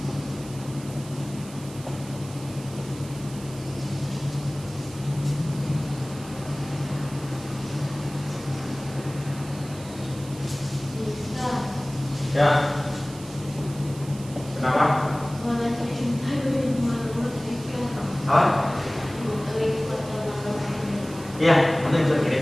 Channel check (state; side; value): noise; right; hiss, 17 dB below the sound